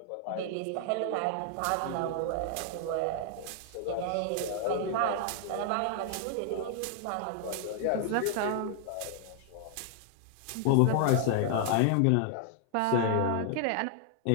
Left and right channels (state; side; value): different; both; correlation 0.00